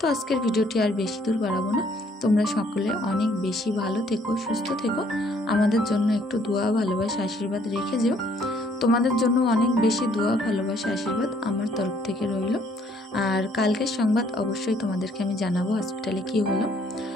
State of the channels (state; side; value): normal; both; correlation 0.64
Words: আজকের ভিডিওটি আর বেশি দূর বাড়াবো না, তোমরা সকলে অনেক বেশি ভালো থেকো, সুস্থ থেকো, আমাদের জন্য একটু দোয়া ভালোবাসা আশীর্বাদ রেখে যেও। তোমাদের জন্য অনেক বেশি দোয়া ভালোবাসা আশীর্বাদ আমার তরফ থেকে রইল। আর কালকের সংবাদ অবশ্যই তোমাদেরকে আমি জানাবো হসপিটালে কি হলো।